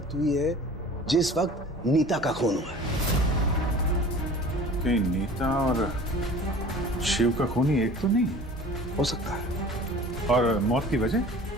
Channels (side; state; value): both; normal; correlation 0.43